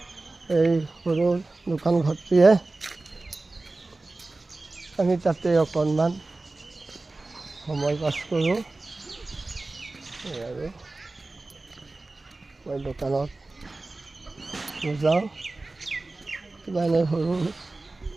এই সৰু দোকান ঘৰটিয়ে আমি তাতে অকণমান সময় পাছ কৰোঁ। আৰু মই দোকানত যাওঁ কিবা এনে সৰু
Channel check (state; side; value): quieter; left; 3.2 dB